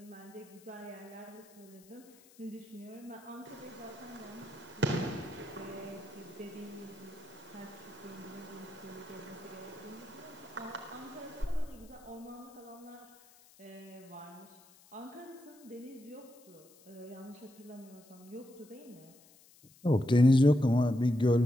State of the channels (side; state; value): left; noise; hiss, 25 dB below the sound